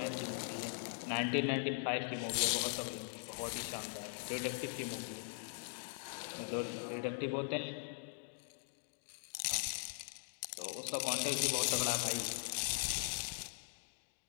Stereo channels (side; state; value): right; silent; digital silence